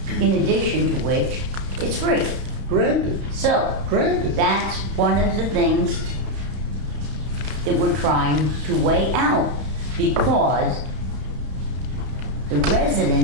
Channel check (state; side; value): late; left; 31 ms